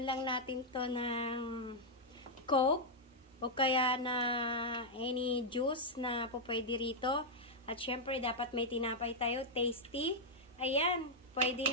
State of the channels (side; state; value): both; normal; correlation -0.04